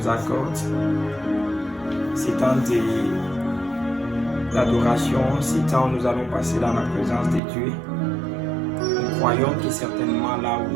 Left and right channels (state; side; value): drops out; left; at 7.4 s